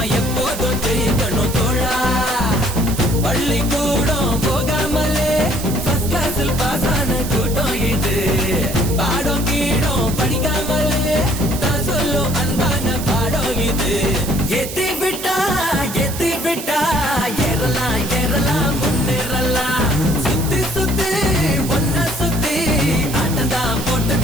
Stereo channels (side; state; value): right; noise; hiss, 9 dB below the sound